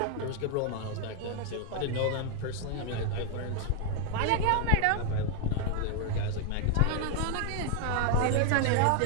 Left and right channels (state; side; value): different; both; correlation 0.01